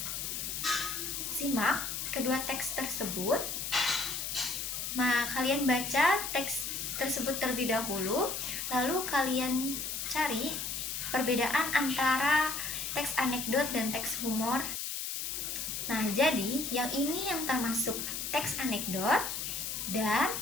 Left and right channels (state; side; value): noise; left; hiss, 3 dB below the sound